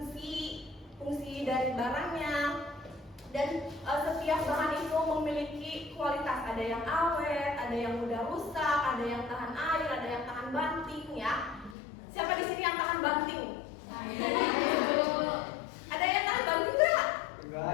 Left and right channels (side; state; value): right; drops out; at 11.8 s